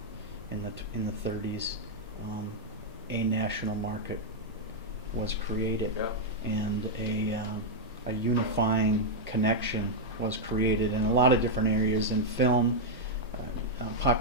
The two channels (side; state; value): both; normal; correlation -0.03